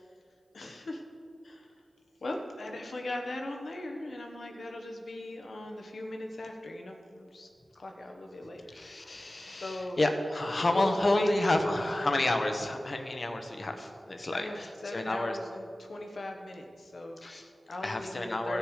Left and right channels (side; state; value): both; normal; correlation 0.96